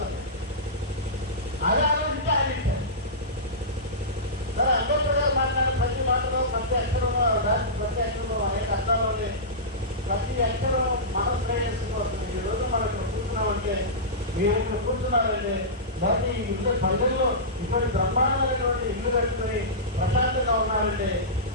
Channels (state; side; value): normal; both; correlation -0.17